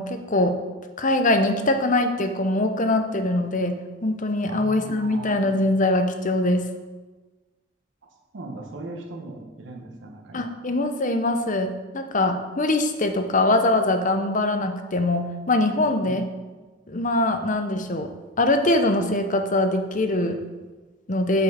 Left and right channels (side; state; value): both; normal; correlation 0.21